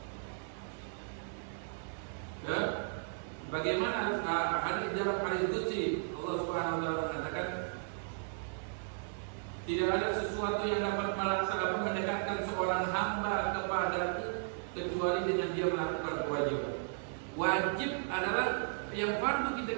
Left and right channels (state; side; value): silent; left; 54 dB below the other